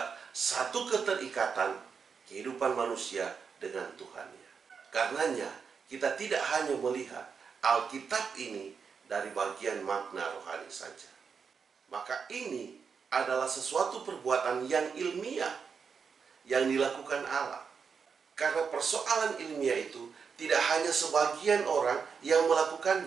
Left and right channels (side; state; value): left; quieter; 6.0 dB